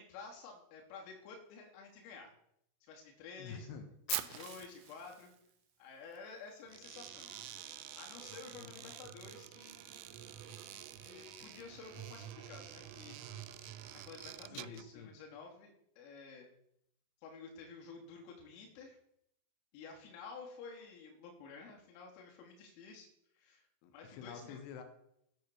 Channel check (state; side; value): late; right; 31 ms